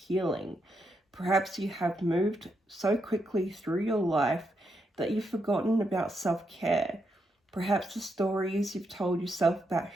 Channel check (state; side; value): normal; both; correlation 0.81